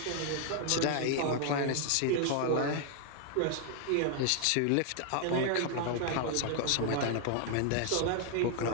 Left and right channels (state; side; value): different; both; correlation 0.00